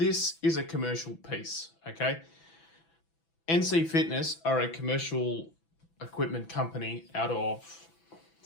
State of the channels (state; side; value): late; right; 6.0 ms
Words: is a commercial piece, okay? NC Fitness are a commercial equipment company out of